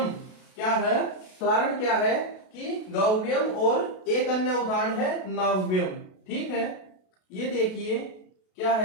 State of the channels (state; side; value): late; right; 32 ms